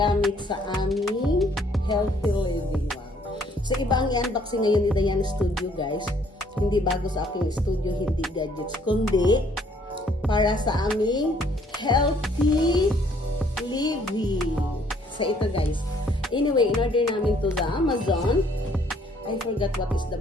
sa aming healthy living. Wow! So, iba ang i-unboxing ngayon ni Diana Studio guys. Hindi bago sa aking studio, hindi gadgets, kundi para sa aming healthy living. So, ito guys. Anyway, in-order namin to sa Amazon. I forgot what is the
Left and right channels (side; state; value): both; normal; correlation 0.63